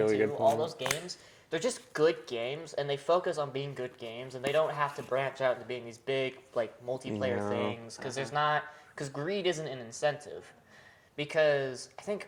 2. good All point. those games, they're just good games, and they focus on being good games, and they don't have to branch out into being these big like multiplayer things because there's not because greed isn't an incentive. Because I think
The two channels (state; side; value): identical; both; correlation 1.00